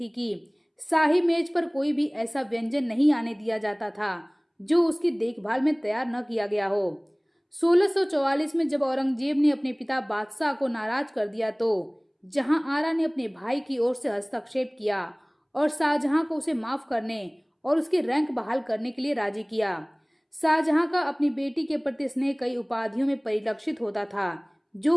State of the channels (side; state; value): both; identical; correlation 1.00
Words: कि शाही मेज पर कोई भी ऐसा व्यंजन नहीं आने दिया जाता था जो उसकी देखभाल में तैयार न किया गया हो। 1644 में जब औरंगजेब ने अपने पिता बादशाह को नाराज कर दिया तो जहांआरा ने अपने भाई की ओर से हस्तक्षेप किया और शाहजहां को उसे माफ करने और उसके रैंक बहाल करने के लिए राजी किया। शाहजहां का अपनी बेटी के प्रति स्नेह कई उपाधियों में परिलक्षित होता था